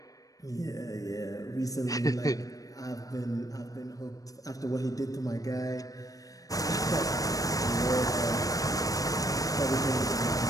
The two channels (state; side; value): late; right; 0.17 ms